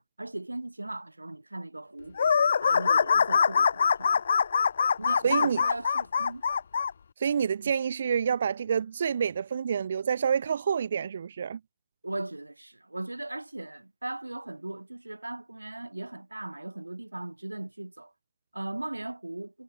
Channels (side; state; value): both; inverted; correlation -0.81